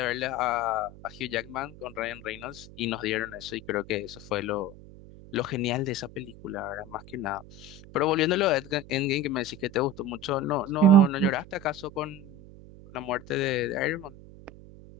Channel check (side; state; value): right; noise; hum, 18 dB below the sound